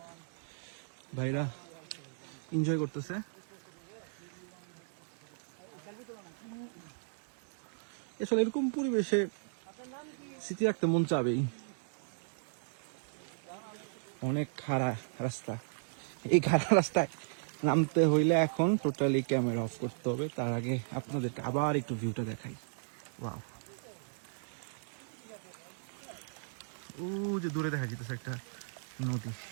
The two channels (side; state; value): left; silent; digital silence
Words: ভাইরা এনজয় করতেছে। আসলে এরকম পরিবেশে স্মৃতি রাখতে মন চাবেই। অনেক খাড়া রাস্তা, এই খাড়া রাস্তায় নামতে হইলে এখন টোটালি ক্যামেরা অফ করতে হবে। তার আগে আপনাদেরকে আবার একটু ভিউটা দেখাই। ওয়াও, ও যে দূরে দেখা যেতেছে একটা নদী।